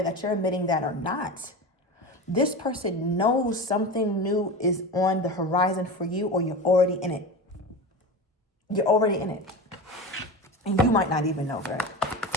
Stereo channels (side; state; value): both; normal; correlation 0.27